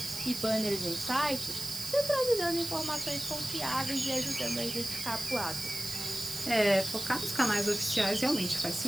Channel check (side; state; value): right; noise; hiss, 7 dB below the sound